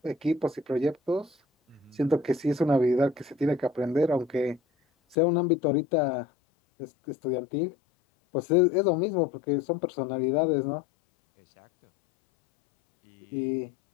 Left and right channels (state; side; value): drops out; right; at 5.2 s